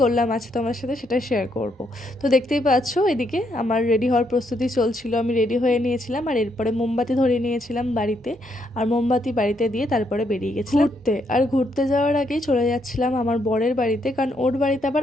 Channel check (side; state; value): both; normal; correlation 0.75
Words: করলাম আছে তোমার সাথে সেটা শেয়ার করব। তো দেখতেই পাচ্ছ এদিকে আমার রেডি হওয়ার প্রস্তুতি চলছিল, আমি রেডি হয়ে নিয়েছিলাম আর এরপরে মোমবাতি ধরিয়ে নিয়েছিলাম বাড়িতে, আর মোমবাতি বাড়িতে দিয়ে তারপরে বেরিয়ে গেছিলাম ঘুরতে। আর ঘুরতে যাওয়ার আগেই চলে যাচ্ছিলাম আমার বরের বাড়িতে, কারণ ওর বাড়িতে আবার